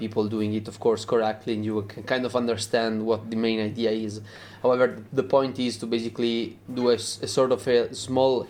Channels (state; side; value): identical; both; correlation 1.00